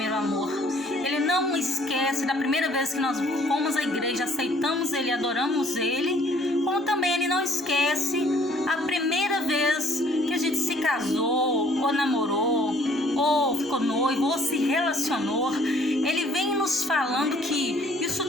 amor. Ele não esquece da primeira vez que nós fomos à igreja, aceitamos Ele, adoramos Ele. Como também Ele não esquece a primeira vez que a gente se casou, ou namorou, ou ficou noivo, ou se relacionou. Ele vem nos falando que isso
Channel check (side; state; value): both; normal; correlation 0.60